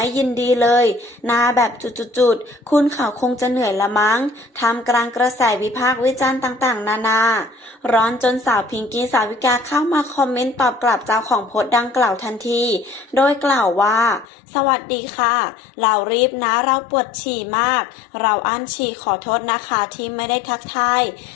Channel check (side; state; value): right; drops out; at 14.2 s